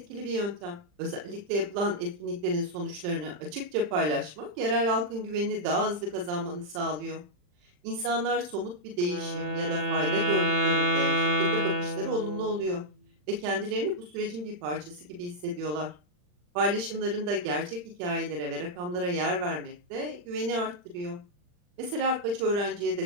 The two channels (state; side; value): late; left; 40 ms